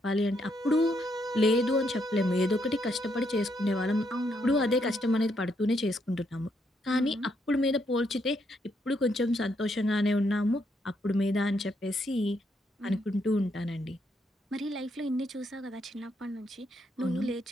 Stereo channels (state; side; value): normal; both; correlation 0.76